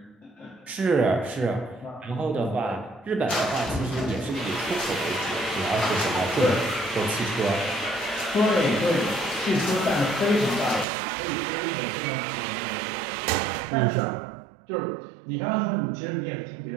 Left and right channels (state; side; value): drops out; left; at 10.9 s